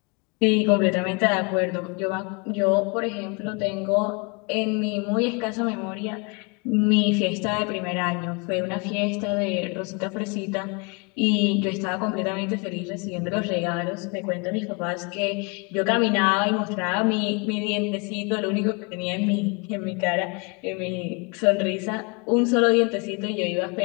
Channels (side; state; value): right; quieter; 32.1 dB